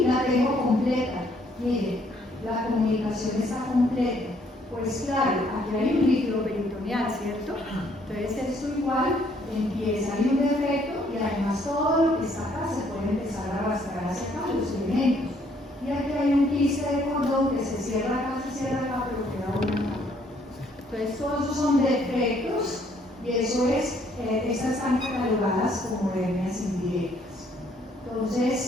la tengo completa, miren, la comunicación está completa. Pues claro, aquí hay un líquido peritoneal, ¿cierto? Entonces esto igual empieza, hay un defecto y además todo lo que está acá se puede empezar a arrastrar hacia acá, los elementos. Y aquí hay un quiste de cordón que se cierra acá, pero queda una capa. Entonces todos esos son defectos y eso es, estas están catalogadas como hernias indirectas.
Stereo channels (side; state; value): both; normal; correlation 0.66